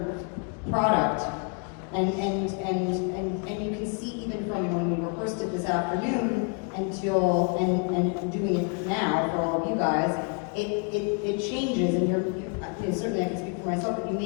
product. And you can see even from when we rehearsed it this afternoon until and doing it now for all of you guys, it changes, and you're certainly I can speak for myself, but you're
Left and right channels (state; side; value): quieter; right; 36.5 dB